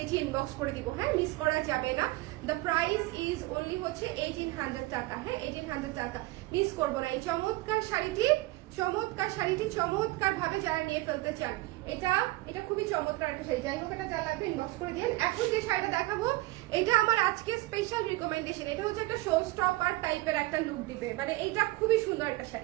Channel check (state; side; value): quieter; left; 20.3 dB